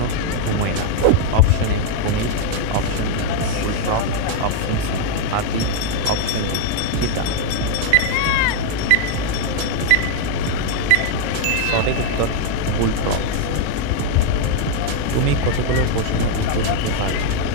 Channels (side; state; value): both; different; correlation 0.00